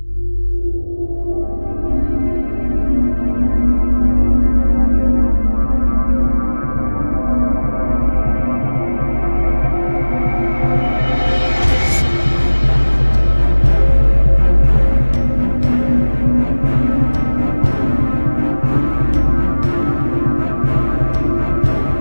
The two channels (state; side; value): inverted; both; correlation -1.00